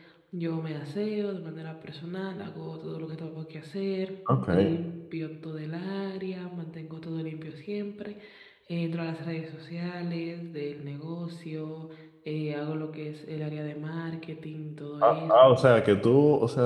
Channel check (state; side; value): identical; both; correlation 1.00